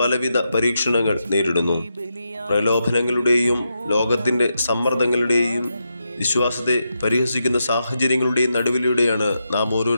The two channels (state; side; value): inverted; both; correlation -0.85